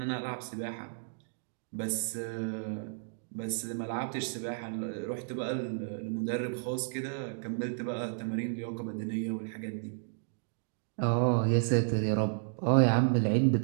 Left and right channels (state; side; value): silent; left; digital silence